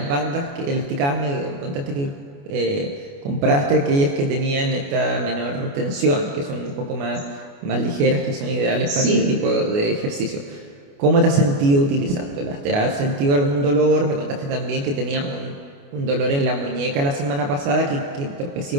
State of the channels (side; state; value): left; late; 28 ms